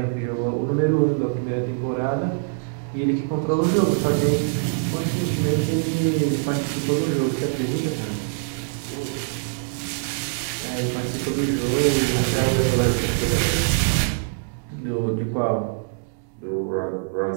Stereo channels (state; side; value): silent; left; digital silence